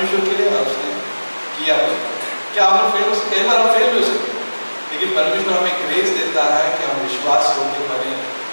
के लिए और उसने किया। क्या हम फेल हो सकते? कई बार हम फेल भी हो सकते, लेकिन परमेश्वर हमें ग्रेस देता है कि हम विश्वास होकर बने।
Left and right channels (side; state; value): both; inverted; correlation -1.00